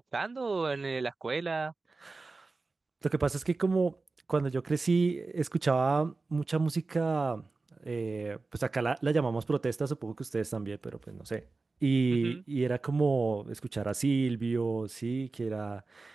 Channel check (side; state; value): left; quieter; 3.7 dB